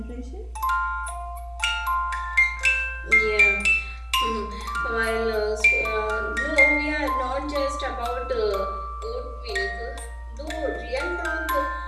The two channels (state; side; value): identical; both; correlation 1.00